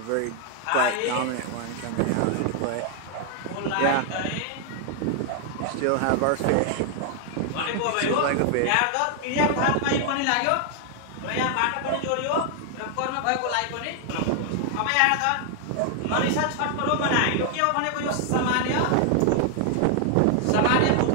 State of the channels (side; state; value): both; different; correlation 0.00